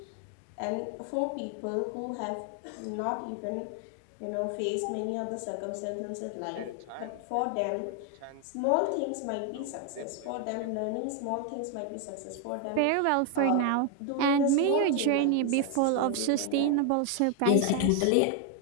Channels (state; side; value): different; both; correlation 0.01